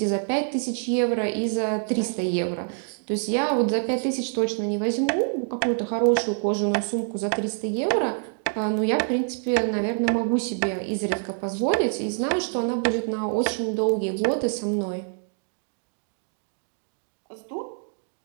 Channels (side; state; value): left; silent; digital silence